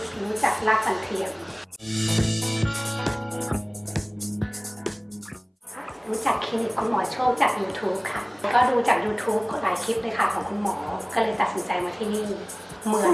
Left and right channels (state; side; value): identical; both; correlation 1.00